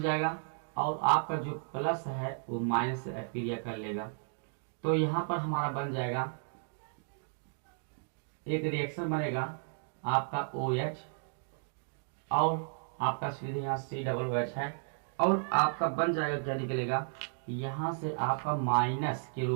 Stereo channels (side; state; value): left; silent; digital silence